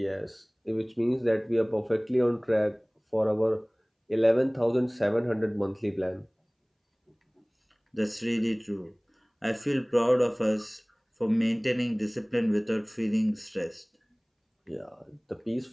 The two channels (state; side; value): identical; both; correlation 1.00